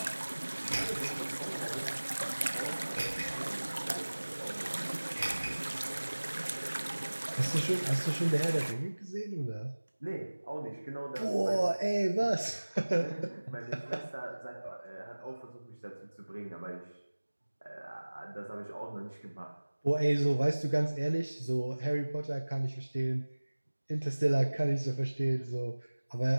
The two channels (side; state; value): both; inverted; correlation -1.00